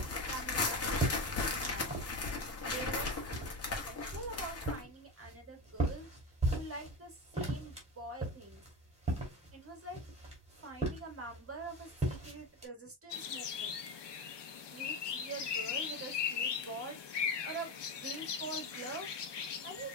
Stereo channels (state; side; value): normal; both; correlation 0.21